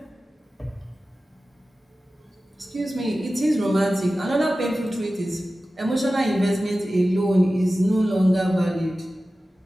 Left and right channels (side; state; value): both; normal; correlation 0.95